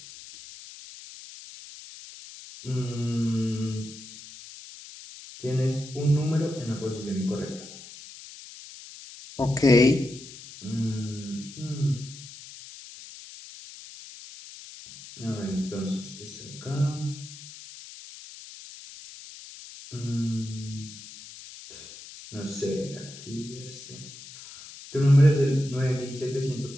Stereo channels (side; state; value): left; noise; hiss, 15 dB below the sound